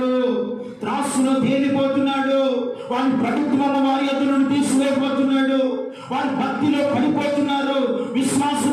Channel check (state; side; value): identical; both; correlation 1.00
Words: త్రాసులో తేలిపోతున్నాడు. వారి ప్రభుత్వం వారి ఎదురును తీసుకుపోతున్నాడు. వారి భక్తిలో పడిపోతున్నారు.